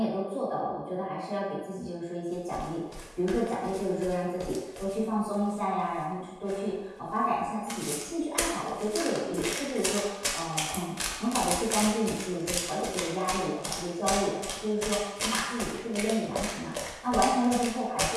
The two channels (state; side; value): identical; both; correlation 1.00